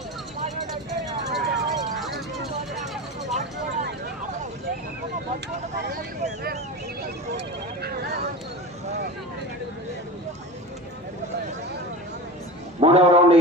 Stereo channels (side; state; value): both; normal; correlation 0.29